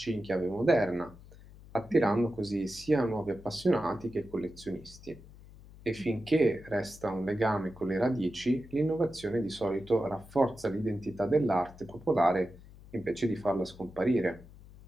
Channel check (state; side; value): noise; left; hum, 20 dB below the sound